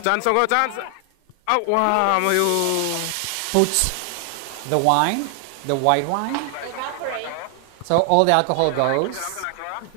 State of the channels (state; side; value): different; both; correlation 0.00